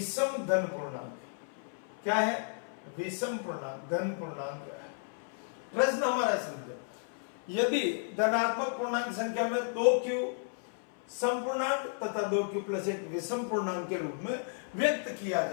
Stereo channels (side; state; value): right; silent; 56 dB below the other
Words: धन पूर्णांक। क्या है, विषम पूर्णांक, धन पूर्णांक है। प्रश्न हमारा समझो, यदि धनात्मक पूर्णांक संख्या में 2q सम पूर्णांक तथा 2q प्लस 1 विषम पूर्णांक के रूप में व्यक्त किया